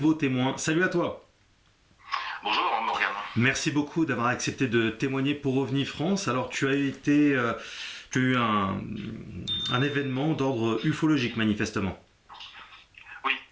témoin. Salut à toi. Bonjour Morgane. Merci beaucoup d'avoir accepté de témoigner pour OVNI France. Alors tu as été, tu as eu un événement d'ordre ufologique manifestement. Oui,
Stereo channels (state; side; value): identical; both; correlation 1.00